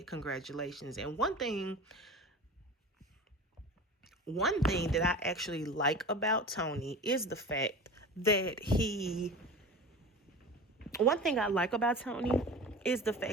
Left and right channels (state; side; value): normal; both; correlation 0.34